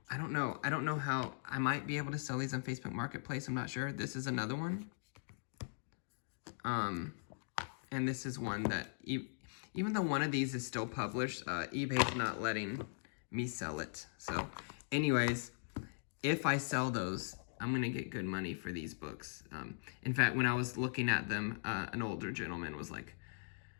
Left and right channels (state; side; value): silent; right; digital silence